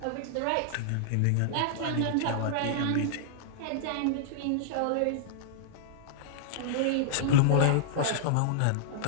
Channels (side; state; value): both; different; correlation -0.01